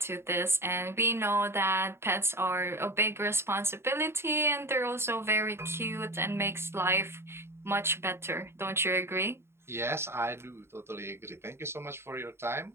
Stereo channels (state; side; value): late; left; 0.12 ms